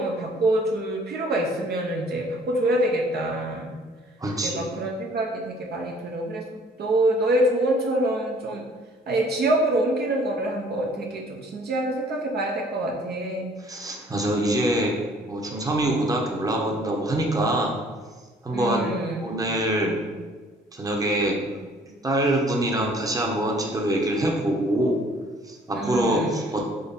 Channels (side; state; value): both; normal; correlation 0.57